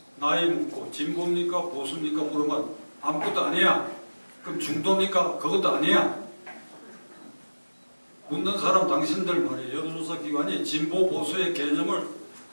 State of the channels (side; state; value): both; inverted; correlation -1.00